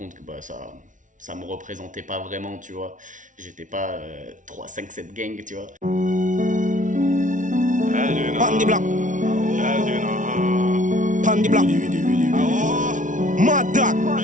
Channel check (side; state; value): left; late; 0.37 ms